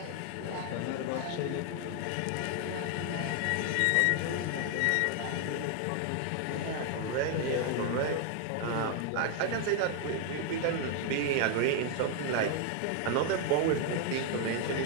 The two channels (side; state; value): both; different; correlation 0.00